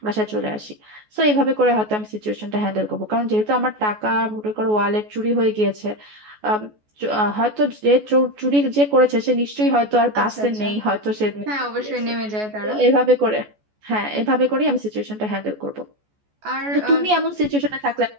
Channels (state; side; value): late; left; 14 ms